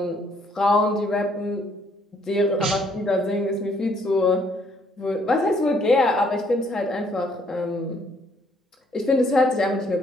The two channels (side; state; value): both; normal; correlation 0.66